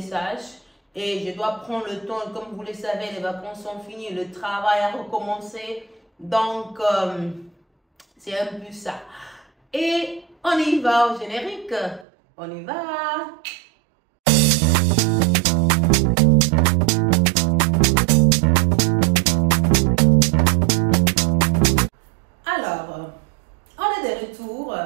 et je dois prendre le temps. Comme vous le savez, les vacances sont finies, le travail a recommencé. Donc, c'est un peu ça. Et on y va au générique. On y va. Alors, on est de retour,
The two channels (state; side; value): drops out; left; at 12.1 s